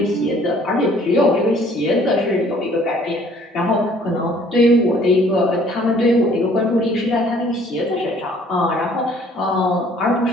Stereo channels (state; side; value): normal; both; correlation 0.57